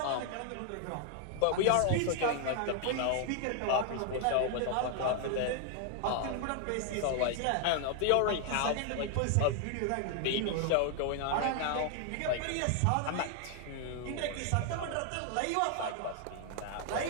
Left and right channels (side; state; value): both; different; correlation 0.00